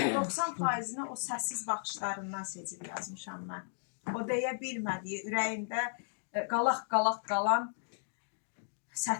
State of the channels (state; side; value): silent; right; digital silence